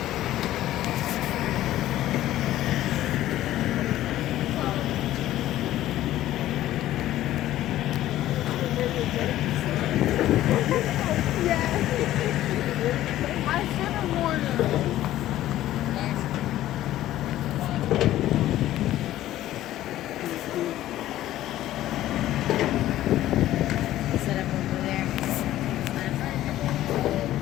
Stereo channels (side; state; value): right; quieter; 14.0 dB